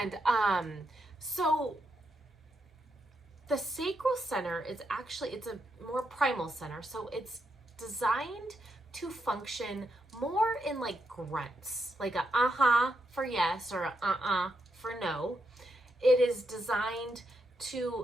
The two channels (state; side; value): normal; both; correlation 0.82